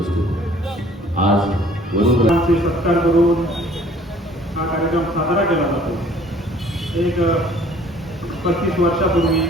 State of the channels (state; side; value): normal; both; correlation 0.55